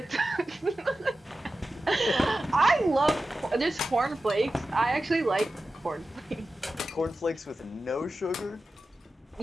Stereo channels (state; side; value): normal; both; correlation 0.93